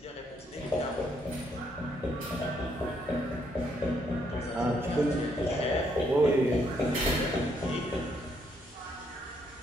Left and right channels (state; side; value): normal; both; correlation 0.73